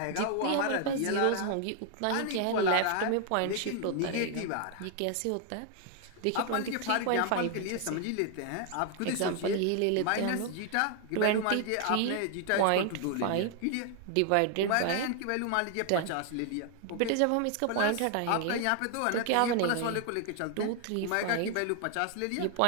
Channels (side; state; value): both; different; correlation 0.00